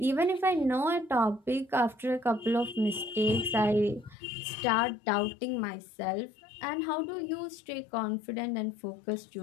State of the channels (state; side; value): drops out; right; at 4.2 s